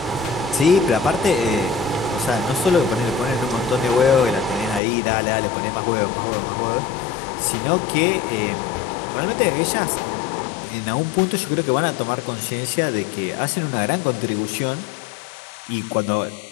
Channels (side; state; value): right; drops out; at 4.8 s